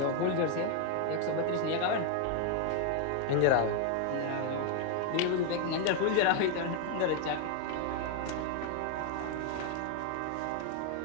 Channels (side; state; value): both; different; correlation 0.00